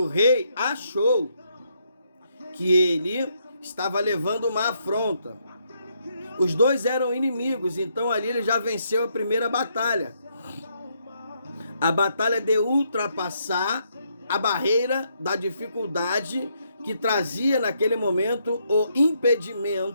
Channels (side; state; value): both; inverted; correlation -0.75